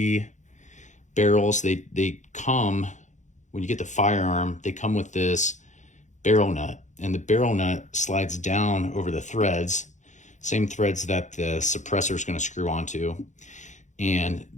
barrels, they come, when you get the firearm, they come with this barrel nut. And the barrel nut slides down over the threads, same threads that the suppressor is going to screw onto. And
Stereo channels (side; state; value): right; late; 0.35 ms